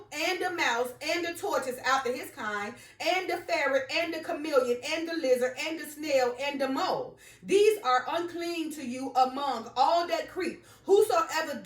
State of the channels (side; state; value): both; identical; correlation 1.00